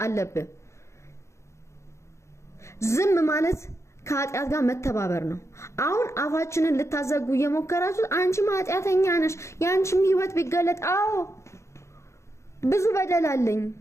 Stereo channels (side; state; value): right; late; 0.14 ms